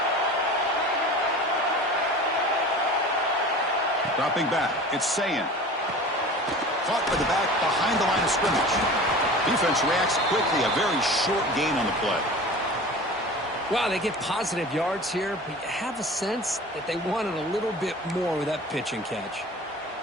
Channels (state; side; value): normal; both; correlation 0.38